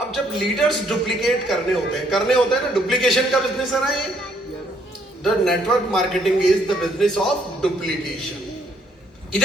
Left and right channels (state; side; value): normal; both; correlation 0.68